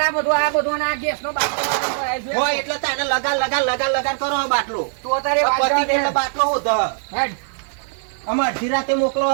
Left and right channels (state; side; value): silent; left; digital silence